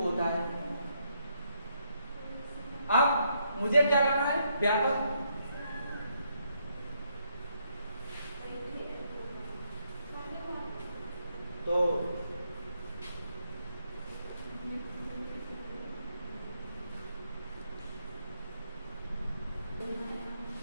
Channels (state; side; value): inverted; both; correlation -0.75